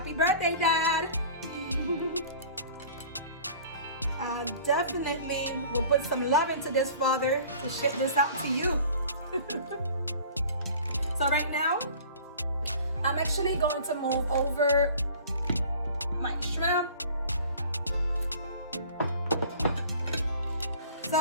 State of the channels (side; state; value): both; inverted; correlation -0.46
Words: birthday, Dad! Definitely will put some love into this, Father, to ship this out to you. So right now, I'm actually going to move over my shrimp.